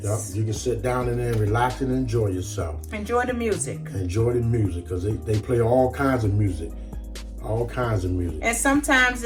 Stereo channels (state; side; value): identical; both; correlation 1.00